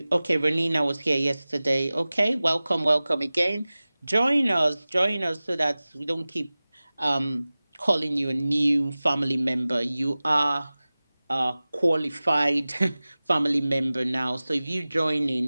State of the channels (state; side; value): inverted; both; correlation -0.98